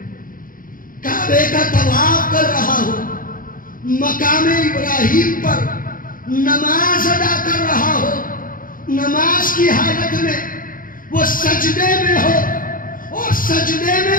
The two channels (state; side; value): late; right; 0.40 ms